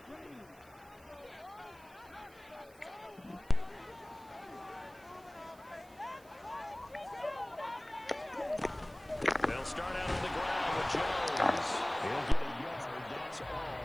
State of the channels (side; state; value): right; noise; hiss, 26 dB below the sound